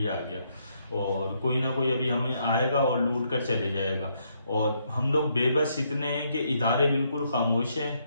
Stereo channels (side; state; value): both; inverted; correlation -0.74